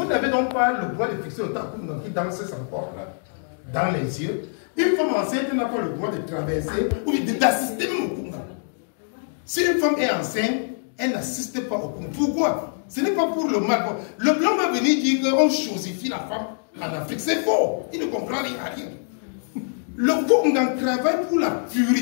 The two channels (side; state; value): right; silent; digital silence